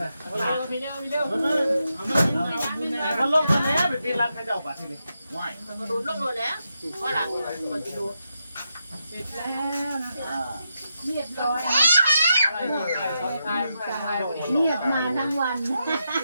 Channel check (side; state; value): both; inverted; correlation -0.85